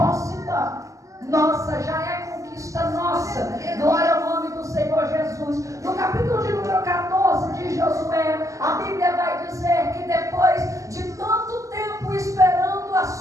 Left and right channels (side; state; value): left; late; 0.16 ms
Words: nossa, já é conquista nossa. Glória ao nome do Senhor Jesus. No capítulo de número 14 de Josué, a Bíblia vai dizer que depois de tanto tempo esperando a